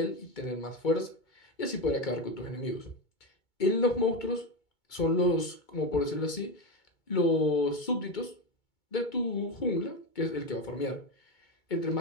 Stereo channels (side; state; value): right; late; 2.2 ms